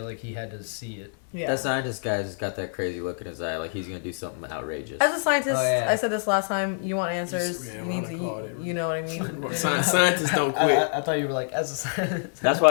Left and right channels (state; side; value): silent; right; 61 dB below the other